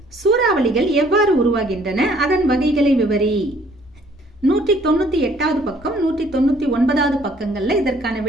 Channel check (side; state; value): both; normal; correlation 0.60